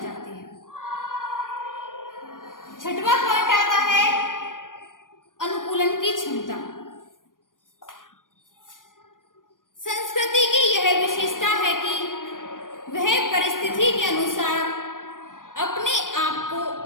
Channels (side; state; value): right; late; 0.89 ms